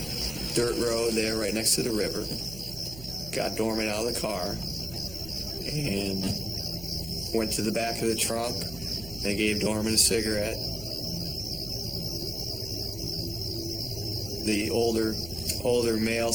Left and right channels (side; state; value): right; noise; hum, 14 dB below the sound